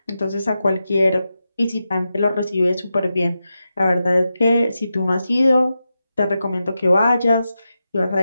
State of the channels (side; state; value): both; inverted; correlation -0.90